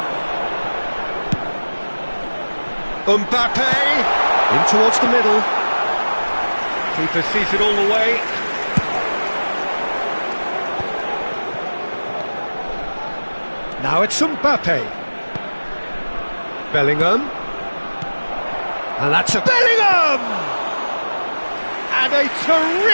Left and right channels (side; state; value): both; inverted; correlation -1.00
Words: Mbappe! In towards the middle. Keeper sees it all the way. Now it's Mbappe. Bellingham. And that's a Bellingham! And a